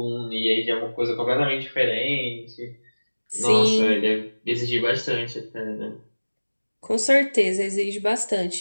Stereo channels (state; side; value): inverted; both; correlation -1.00